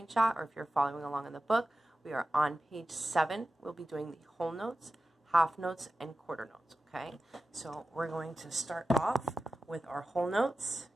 or if you're following along in the book, we are on page 7. We'll be doing the whole notes, half notes, and quarter notes, okay? So we're going to start off with our whole notes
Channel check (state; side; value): normal; both; correlation 0.94